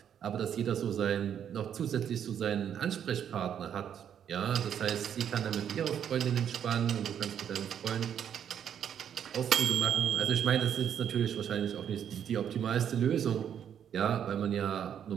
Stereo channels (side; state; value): left; quieter; 9.0 dB